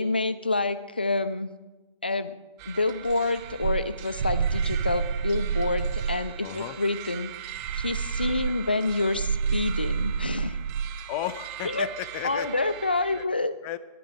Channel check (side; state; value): both; inverted; correlation -0.71